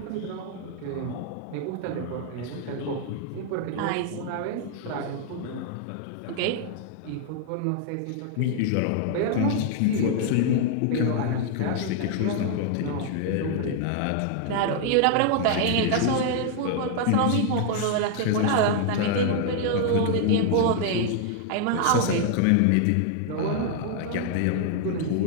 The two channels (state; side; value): different; both; correlation 0.00